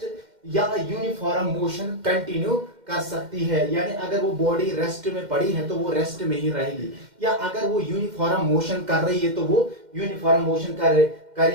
या यूनिफॉर्म मोशन कंटिन्यू कर सकती है। यानी अगर वो बॉडी रेस्ट में पड़ी है तो वो रेस्ट में ही रहेगी, या अगर वो यूनिफॉर्म मोशन कर रही है तो वो यूनिफॉर्म मोशन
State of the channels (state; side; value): late; left; 2.1 ms